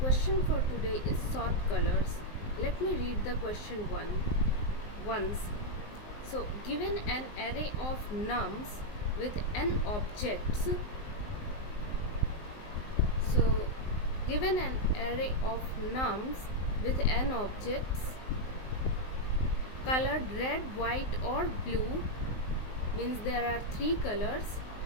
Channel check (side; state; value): right; late; 19 ms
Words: for today is sort colors. Let me read the question once. So, given an array of nums with n objects, so given an array of nums with n objects colored red, white or blue, means there are three colors.